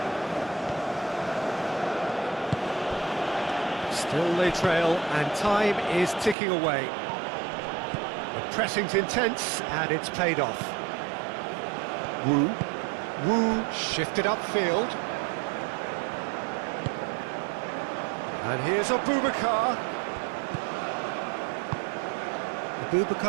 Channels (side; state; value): left; drops out; at 6.4 s